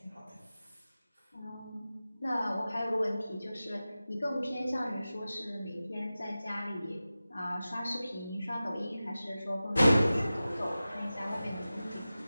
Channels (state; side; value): inverted; both; correlation -0.95